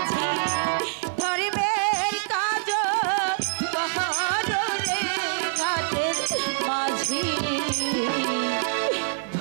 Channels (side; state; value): left; silent; 62 dB below the other